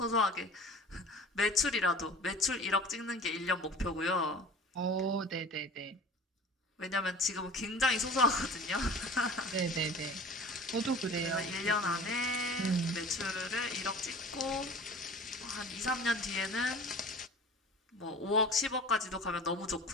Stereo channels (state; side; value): normal; both; correlation 0.41